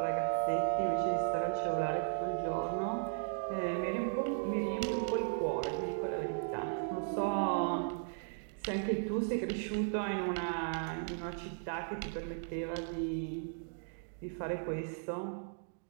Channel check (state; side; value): silent; left; digital silence